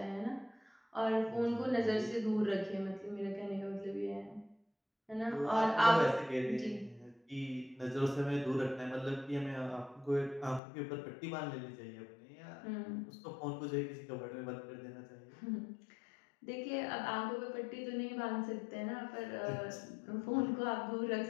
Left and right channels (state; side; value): drops out; right; at 10.6 s